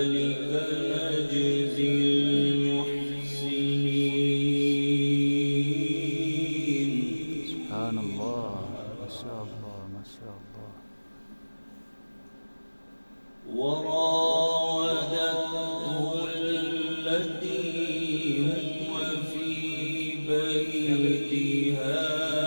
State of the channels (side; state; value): both; inverted; correlation -1.00